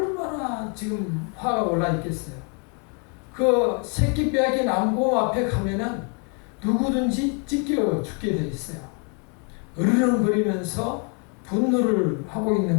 지금 화가 올라 있겠어요. 그 새끼 빼앗긴 암곰 앞에 가면은 누구든지 찢겨 죽게 돼 있어요. 으르렁거리면서 분노를 하고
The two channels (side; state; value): right; quieter; 37.0 dB